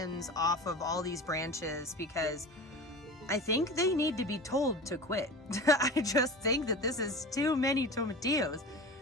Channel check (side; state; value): both; normal; correlation 0.33